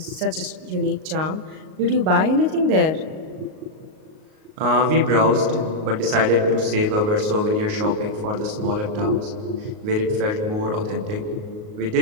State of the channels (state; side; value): late; left; 38 ms